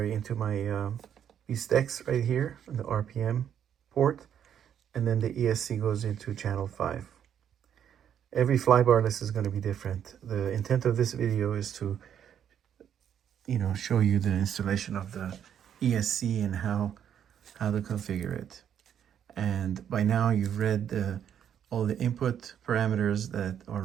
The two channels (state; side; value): quieter; left; 9.2 dB